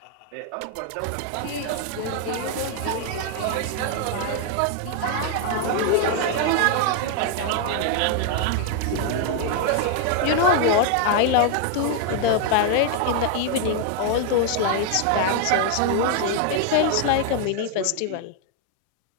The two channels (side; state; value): both; different; correlation 0.00